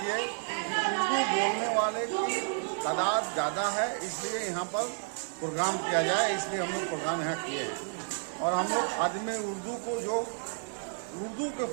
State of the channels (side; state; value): left; silent; 57 dB below the other